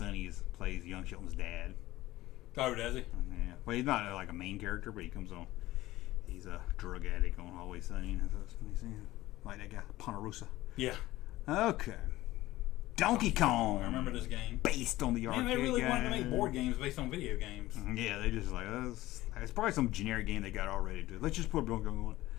plays Young Sheldon's dad. Oh, does he? Yeah, well, he's not like a main character, but he comes on. He's a drug addict on Always Sunny, like that guy Ponderosa. Yeah. Okay, Donkey Kong. I remember this game. Based on the arcade Man, they really game. wanted to make board games based on video games. Yeah, they just like it's probably some generic game they got already. Let's just put Donkey Kong on.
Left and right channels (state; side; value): quieter; right; 16.9 dB